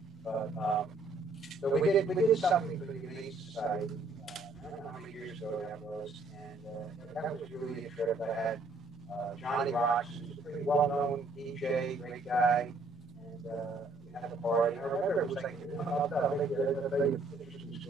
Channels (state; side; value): quieter; left; 3.1 dB